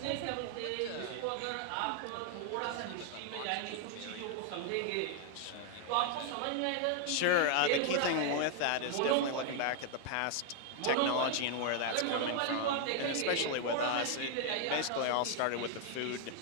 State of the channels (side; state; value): both; different; correlation 0.00